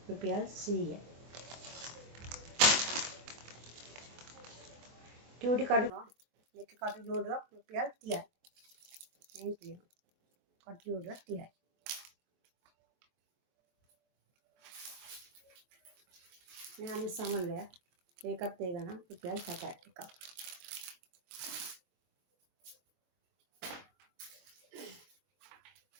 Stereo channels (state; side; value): late; left; 24 ms